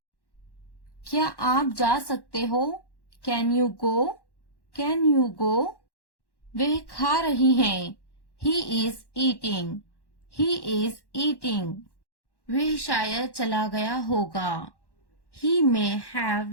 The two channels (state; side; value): late; right; 1.1 ms